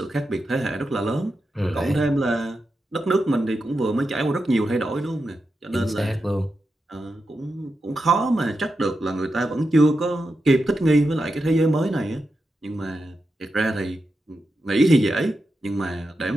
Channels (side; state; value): both; normal; correlation 0.88